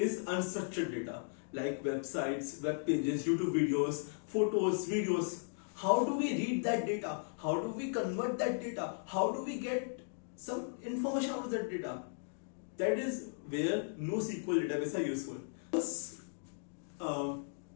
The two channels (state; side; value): silent; right; digital silence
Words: unstructured data, like websites, web pages, YouTube videos, photos, videos. How do we read that data? How do we convert that data? How do we get some information out of that data? That is where NoSQL databases are useful. This